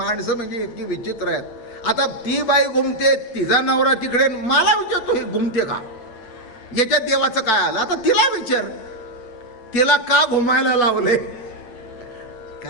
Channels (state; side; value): late; right; 9.0 ms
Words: म्हणजे इतकी विचित्र आहेत. आता ती बाई घुमते, तिचा नवरा तिकडे, मला विचारतो हे घुमते का? याच्यात देवाचं काय आलं? आता तिला विचार, तिला का घुमायला लावले